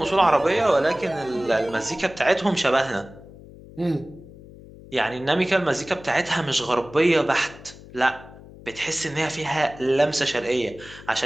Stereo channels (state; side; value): noise; left; hum, 19 dB below the sound